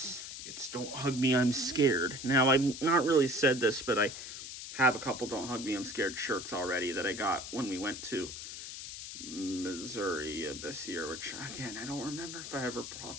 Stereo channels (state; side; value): noise; left; hiss, 9 dB below the sound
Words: it's Don't Hug Me, I'm Scared. Now, I've not really said this, but I have a couple Don't Hug Me, I'm Scared shirts already that I got when we went to Missouri this year, which, again, I don't remember if I ever